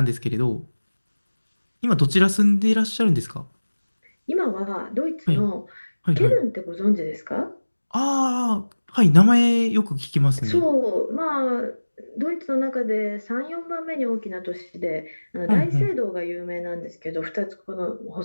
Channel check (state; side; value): inverted; both; correlation -1.00